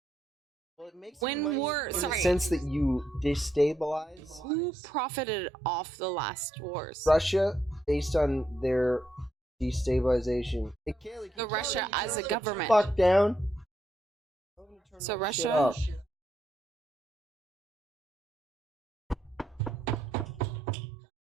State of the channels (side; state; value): both; normal; correlation 0.79